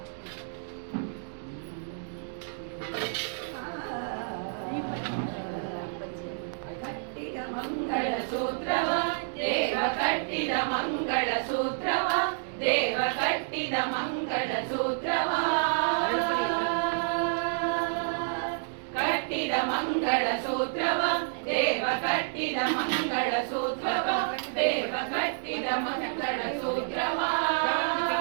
ಕಟ್ಟಿದ ಮಂಗಳ ಸೂತ್ರವ ದೇವ ಕಟ್ಟಿದ ಮಂಗಳ ಸೂತ್ರವ ದೇವ ಕಟ್ಟಿದ ಮಂಗಳ ಸೂತ್ರವ ಕಟ್ಟಿದ ಮಂಗಳ ಸೂತ್ರವ ದೇವ ಕಟ್ಟಿದ ಮಂಗಳ ಸೂತ್ರವ ದೇವ ಕಟ್ಟಿದ ಮಂಗಳ ಸೂತ್ರವ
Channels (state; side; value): silent; left; digital silence